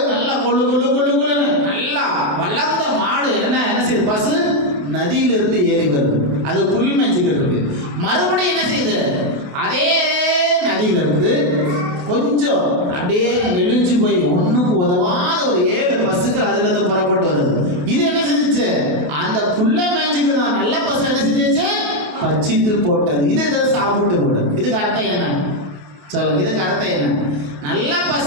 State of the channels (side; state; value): left; late; 28 ms